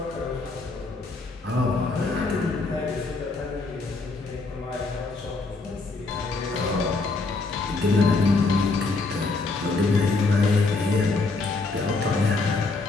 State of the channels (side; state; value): right; quieter; 3.7 dB